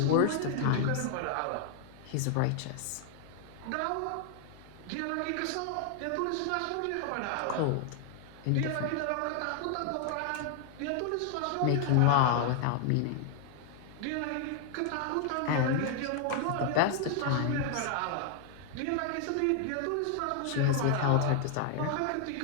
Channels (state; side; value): different; both; correlation 0.00